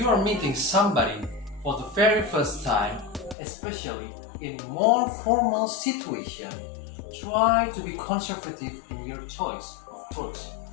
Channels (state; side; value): drops out; right; at 3.4 s